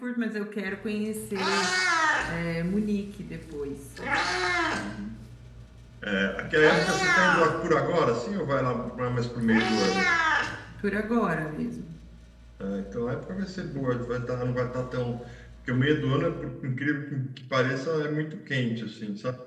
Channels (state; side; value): identical; both; correlation 1.00